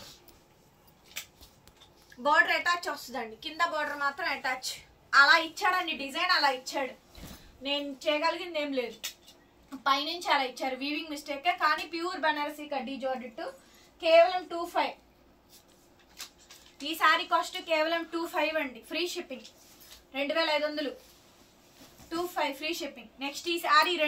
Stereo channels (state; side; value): identical; both; correlation 1.00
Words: బార్డర్ అటాచ్ వస్తుందండి, కింద బార్డర్ మాత్రం అటాచ్. అలా ఇచ్చాడండి డిజైన్, అలా ఇచ్చాడు. నేను చేయగలిగింది ఏం లేదు, పైనుంచి అలా ఇచ్చారు. వీవింగ్ మిస్టేకే, కానీ ప్యూర్ బనారసి కడ్డీ జార్జెట్ కేవలం 25. ఈ శారీ కాస్ట్ కేవలం 25 అండి. Free shipping 2500. 25 free shipping. Next ఈ శారీ